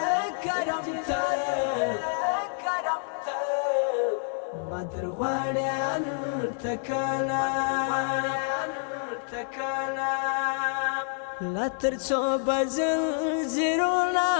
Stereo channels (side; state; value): right; silent; 59 dB below the other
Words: کرم ته کرم ته مدرواړې هلته کله لا تر څو بزلزلونه